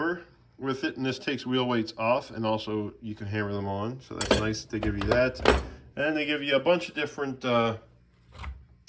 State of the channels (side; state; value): both; identical; correlation 1.00